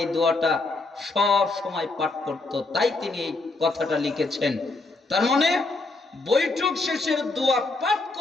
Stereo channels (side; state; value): right; quieter; 3.3 dB